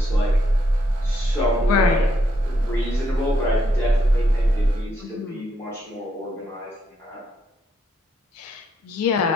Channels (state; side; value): normal; both; correlation 0.76